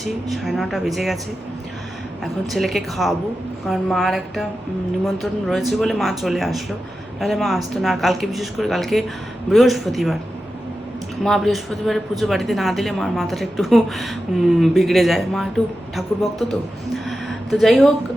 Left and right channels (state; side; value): normal; both; correlation 0.91